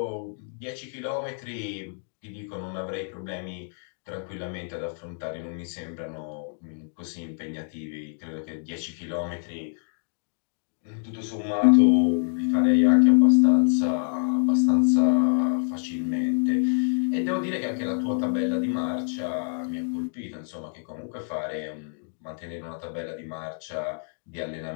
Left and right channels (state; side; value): silent; right; 59 dB below the other